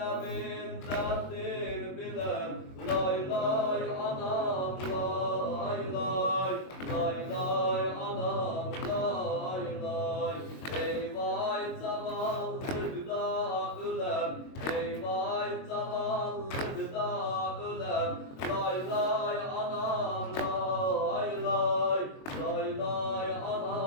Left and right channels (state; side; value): late; right; 22 ms